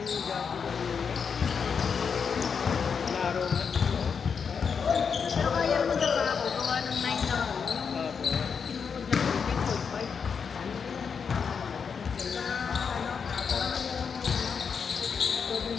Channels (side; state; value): right; quieter; 6.2 dB